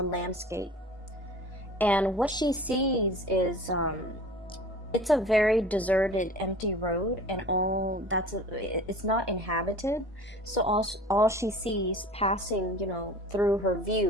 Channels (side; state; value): both; normal; correlation 0.42